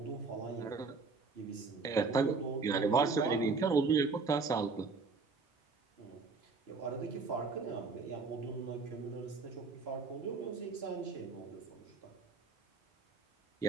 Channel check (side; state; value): left; quieter; 4.4 dB